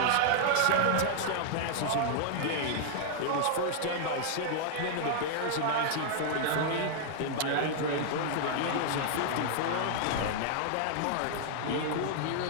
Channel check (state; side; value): different; both; correlation -0.01